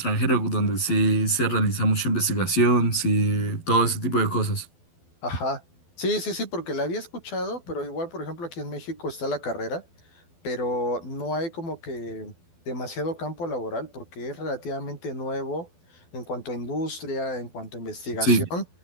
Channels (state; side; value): late; right; 12 ms